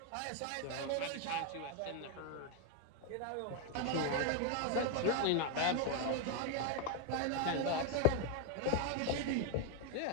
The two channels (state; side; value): different; both; correlation 0.01